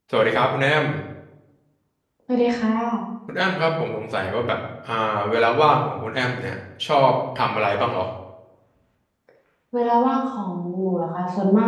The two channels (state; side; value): identical; both; correlation 1.00